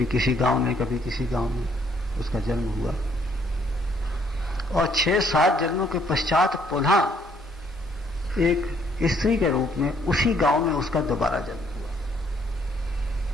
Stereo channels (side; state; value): both; normal; correlation 0.66